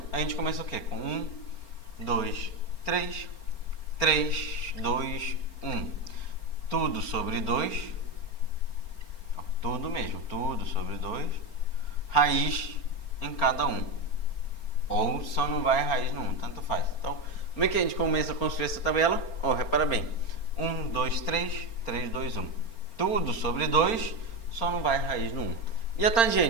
a gente começa o quê? Com 1, 2, 3. 3, 2, 1. Tudo sobre 2. Tudo mesmo. Tudo sobre 2. Raiz em cada um. Ou só não vai raiz no 1. Tanto faz. Então, como é que a gente começa a construir essa tabela? Repara bem. 1, 2, 3. 3, 2, 1. Tudo sobre 2. Só não vai raiz no 1. E a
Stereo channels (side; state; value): right; late; 4.3 ms